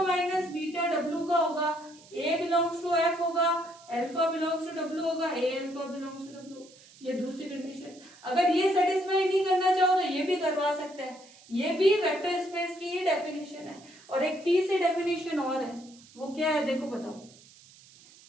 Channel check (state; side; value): noise; right; hiss, 24 dB below the sound